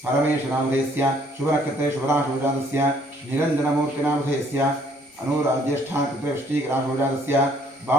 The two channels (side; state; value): both; normal; correlation 0.63